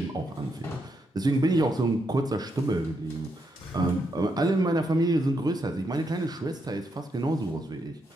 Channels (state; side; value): normal; both; correlation 0.80